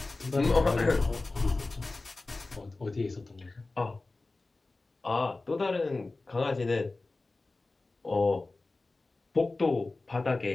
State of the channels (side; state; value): right; quieter; 3.3 dB